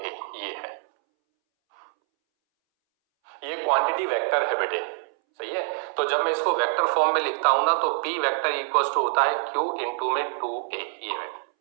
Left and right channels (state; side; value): silent; left; 61 dB below the other